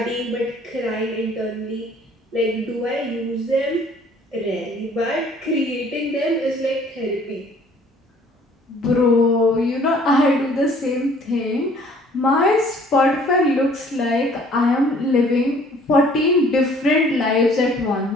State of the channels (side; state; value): both; normal; correlation 0.56